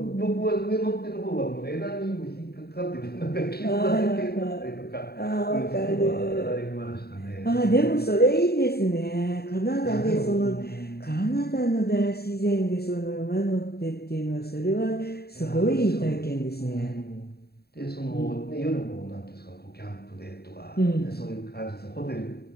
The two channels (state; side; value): late; right; 0.46 ms